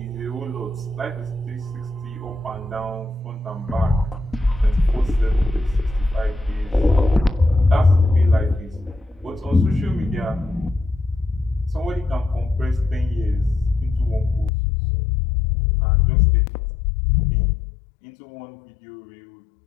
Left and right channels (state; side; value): drops out; right; at 14.5 s